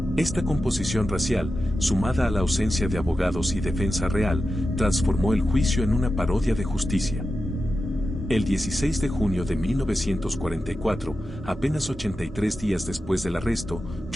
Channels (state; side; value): normal; both; correlation 0.91